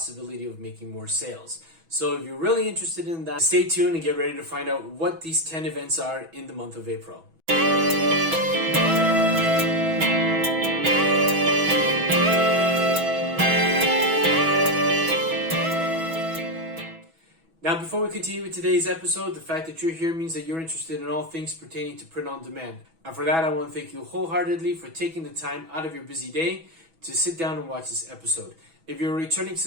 of making more sales. So if you're really interested in that, stay tuned and get ready to find out what these 10 events are in the month of April. Now, before we continue with today's episode, the fact that you're here means that you're interested in all things pertaining to print on demand. And for that, I want to thank you wholeheartedly for taking the time out of your busy day to sit down and watch this episode. If you're a returning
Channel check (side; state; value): left; late; 6.1 ms